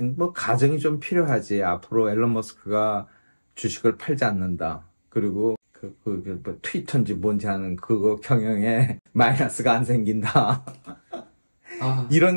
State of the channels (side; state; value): both; inverted; correlation -1.00